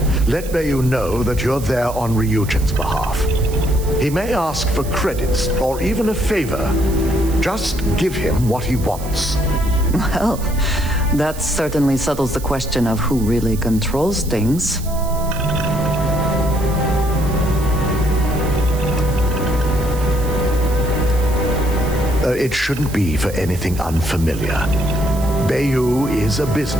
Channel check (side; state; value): right; noise; hiss, 15 dB below the sound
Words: Let Bayou know that you're there on Ryujin's behalf. He may ask for credits or even a favor. Just give him what he wants. Well, that certainly settles the question of who really controls things. It shouldn't be for anything unfamiliar. Bayou is a